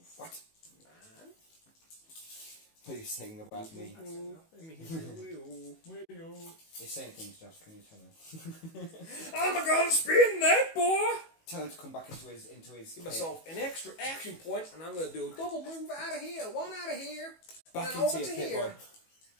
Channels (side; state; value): right; late; 18 ms